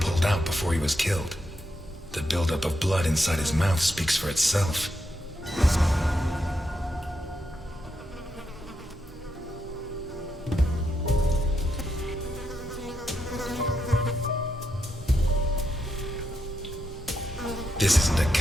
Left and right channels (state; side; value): normal; both; correlation 0.83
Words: out before he was killed. The buildup of blood inside his mouth speaks for itself. This isn't a